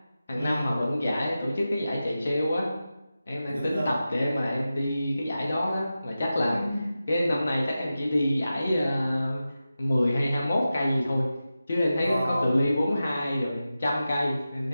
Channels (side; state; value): both; inverted; correlation -0.93